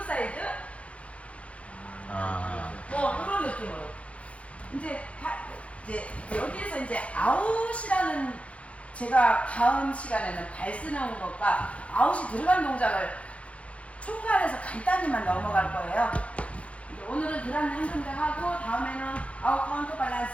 사이즈? 이런 느낌으로. 이제 여기에서 이제 아웃이라는 제가 다음 시간에는 발 쓰는 것과 아웃이 들어간 동작을 총괄해서 간단히만 넘어갈 거예요. 오늘은 드라미 한 동작 하고 다음에는 아웃 카운터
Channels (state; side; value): late; right; 0.063 ms